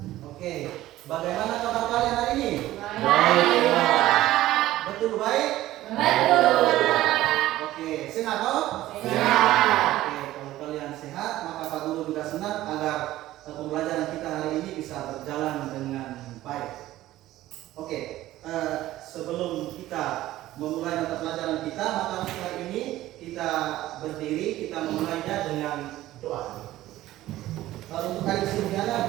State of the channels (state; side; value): quieter; left; 15.2 dB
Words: Oke, bagaimana kabar kalian hari ini? Baik, Pak. Betul baik? Betul, Pak. Oke, sehat toh? Sehat. Oke, kalau kalian sehat, maka Pak Guru juga senang agar pembelajaran kita hari ini bisa berjalan dengan baik. Oke, sebelum kita memulai mata pelajaran kita, maka hari ini kita berdiri, kita memulainya dengan doa. Kalau untuk hari Silviana